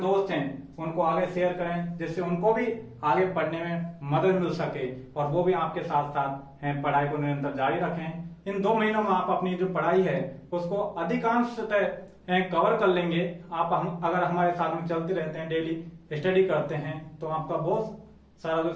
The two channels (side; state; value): both; identical; correlation 1.00